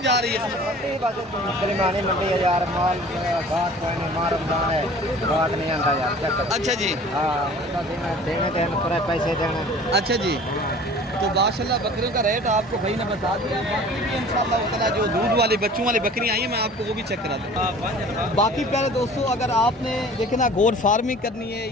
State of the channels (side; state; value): both; normal; correlation 0.45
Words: जा रही है? अच्छा जी, पैसे देने। अच्छा जी। तो माशाल्लाह बकरियों का रेट आपको भाई ने बता दिया। बाकी भी इंशाल्लाह ताला जो दूध वाली बच्चों वाली बकरियां आई हैं मैं आपको वो भी चेक करा दूँ। बाकी प्यारे दोस्तों अगर आपने देखे ना गोट फार्मिंग करनी है